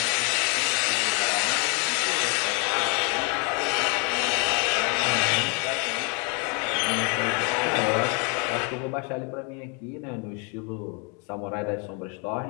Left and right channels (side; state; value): right; quieter; 35.1 dB